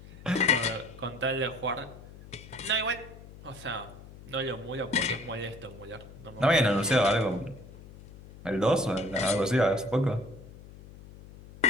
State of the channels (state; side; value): noise; left; hum, 18 dB below the sound